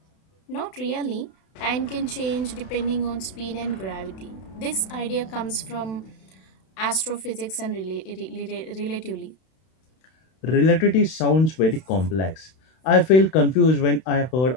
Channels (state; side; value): late; right; 32 ms